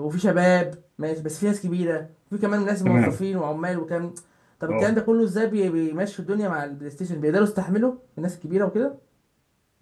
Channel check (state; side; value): identical; both; correlation 1.00